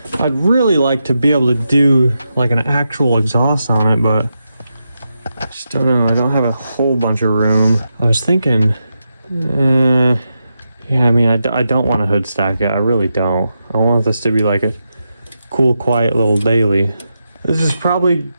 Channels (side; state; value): both; inverted; correlation -0.87